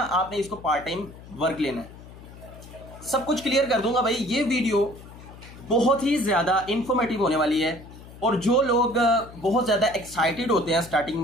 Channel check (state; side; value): noise; left; hum, 18 dB below the sound